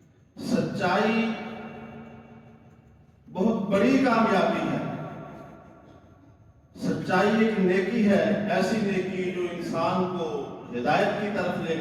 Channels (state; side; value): identical; both; correlation 1.00